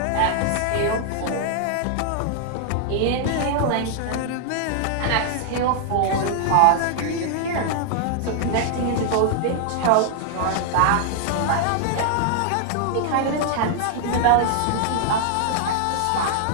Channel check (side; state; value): both; different; correlation 0.00